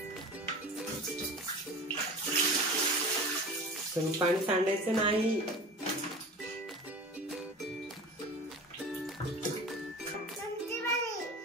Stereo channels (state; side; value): normal; both; correlation 0.36